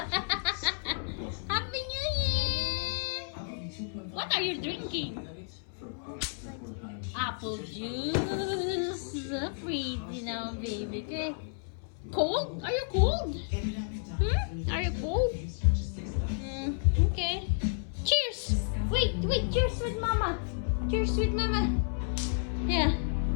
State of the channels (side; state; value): right; silent; 57 dB below the other